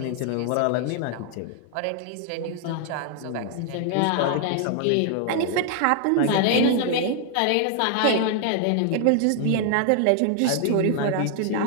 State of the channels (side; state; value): both; different; correlation 0.00